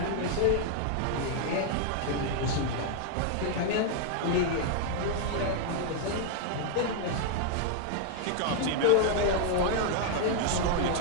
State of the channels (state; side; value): different; both; correlation 0.00